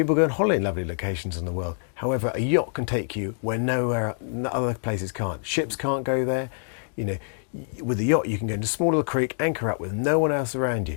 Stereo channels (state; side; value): silent; right; digital silence